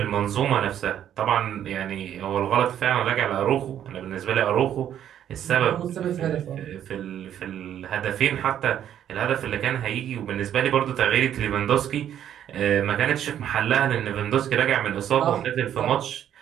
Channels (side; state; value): left; quieter; 10.3 dB